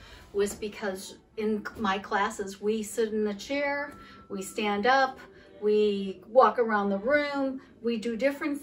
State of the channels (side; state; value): both; identical; correlation 1.00